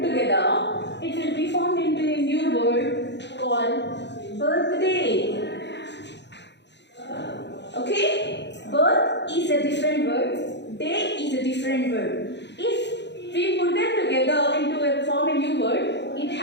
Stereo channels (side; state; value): right; late; 0.51 ms